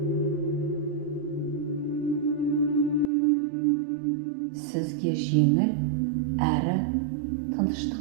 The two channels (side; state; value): left; drops out; at 3.1 s